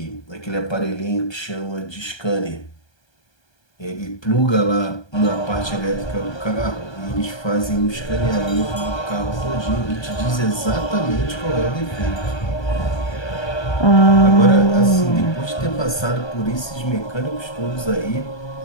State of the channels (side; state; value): right; late; 1.3 ms